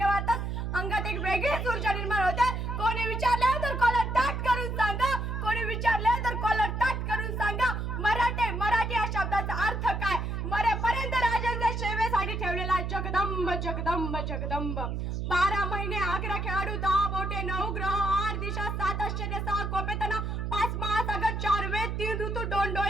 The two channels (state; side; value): noise; right; hum, 2 dB below the sound